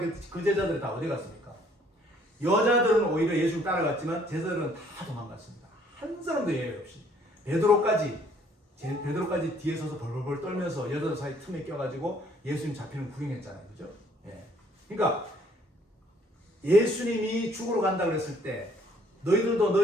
그 제자들이 다 어디 갔습니까? 여자들은 오히려 예수님 따라갔지만 제자들은 다 도망갔습니다. 한 사람도 예외 없이. 베드로까지 뒤에 서서 벌벌벌 떨면서 여자들 사이 틈에 껴가지고 예수님 잡히는 구경했잖아요. 그죠? 예. 그러니까 예수님이 죽으러 간다 그랬을 때 너희들도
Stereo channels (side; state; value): both; normal; correlation 0.62